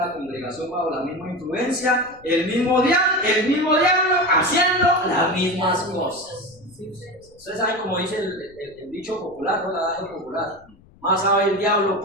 congregación bajo la misma influencia, el mismo diablo haciendo las mismas cosas. Ustedes saben como dice el dicho popular, ¿no? El adagio popular: más sabe el diablo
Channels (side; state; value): left; noise; rumble, 27 dB below the sound